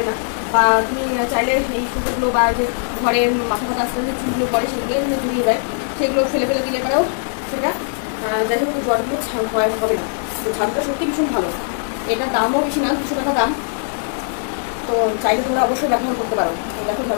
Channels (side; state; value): right; silent; 63 dB below the other